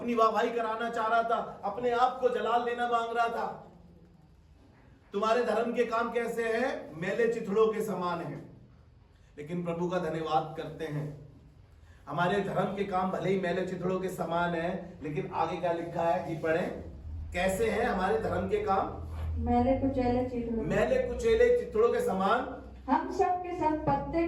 वाहवाही कराना चाह रहा था, अपने आप को जलाल देना मांग रहा था। तुम्हारे धर्म के काम कैसे हैं? मैले चिथड़ों के समान हैं। लेकिन प्रभु का धन्यवाद करते हैं, हमारे धर्म के काम भले ही मैले चिथड़ों के समान है, लेकिन आगे क्या लिखा है जी पढ़ें, कैसे हैं हमारे धर्म के काम? मैले कुचैले चिथड़ों, मैले कुचैले चिथड़ों के समान। हम सब के सब पत्ते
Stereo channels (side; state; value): both; identical; correlation 1.00